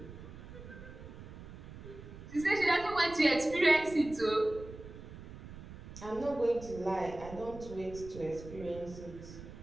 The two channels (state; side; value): noise; right; rumble, 14 dB below the sound